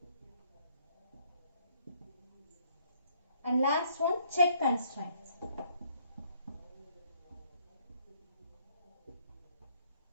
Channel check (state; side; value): inverted; both; correlation -0.66